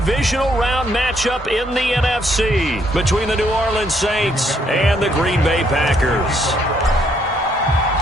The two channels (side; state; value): both; normal; correlation 0.70